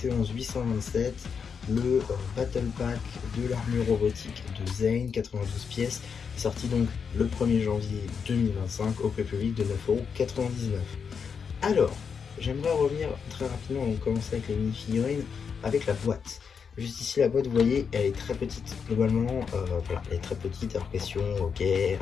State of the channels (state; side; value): quieter; right; 6.3 dB